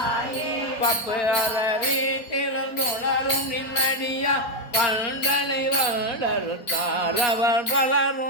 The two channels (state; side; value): late; right; 4.5 ms